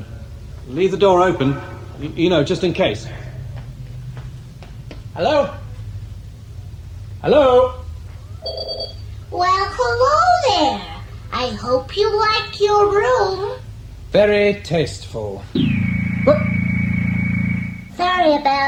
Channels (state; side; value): identical; both; correlation 1.00